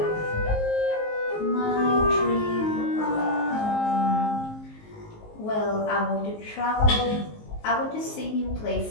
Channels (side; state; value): right; late; 19 ms